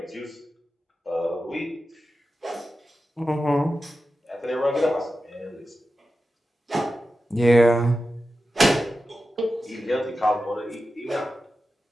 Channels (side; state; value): both; normal; correlation 0.92